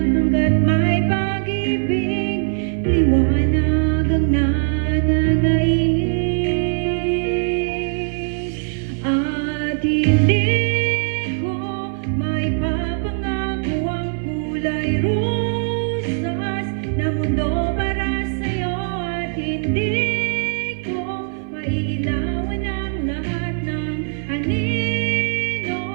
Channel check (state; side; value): silent; left; 57 dB below the other